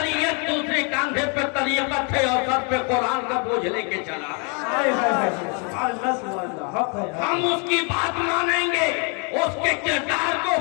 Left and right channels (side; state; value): right; quieter; 35.9 dB